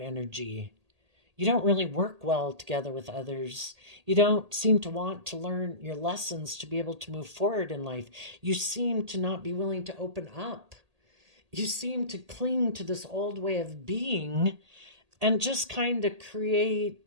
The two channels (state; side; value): late; left; 1.8 ms